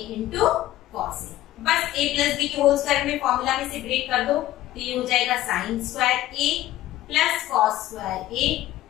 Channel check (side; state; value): right; quieter; 14.7 dB